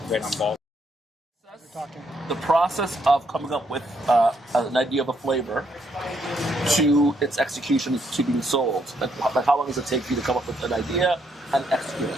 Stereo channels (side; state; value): both; normal; correlation 0.73